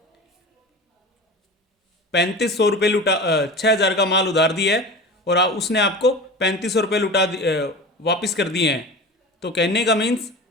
3,500 रुपये 6,000 का माल उधार दिया है, और उसने आपको 3,500 रुपये वापस कर दिए हैं। तो कहने का मीन्स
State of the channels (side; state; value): both; normal; correlation 0.32